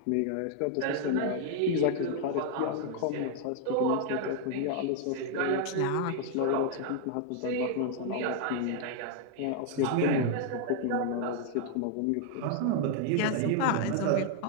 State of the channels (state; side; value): different; both; correlation 0.00